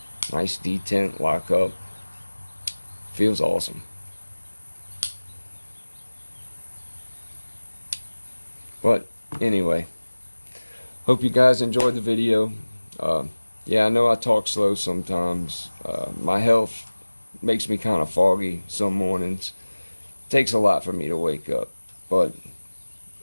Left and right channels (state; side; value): inverted; both; correlation -1.00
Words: Nice detent, lock up. Feels awesome. But anyway, hope you guys enjoyed the video. Yeah, I know I talk slow sometimes. My health makes me kind of foggy some mornings. It takes a lot for me to wake up, but